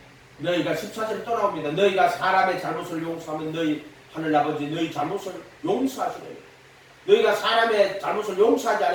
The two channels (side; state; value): both; identical; correlation 1.00